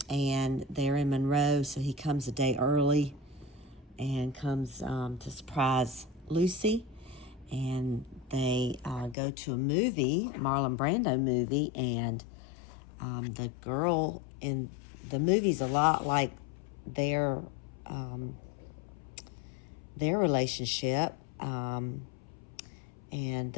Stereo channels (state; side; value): drops out; right; at 9.2 s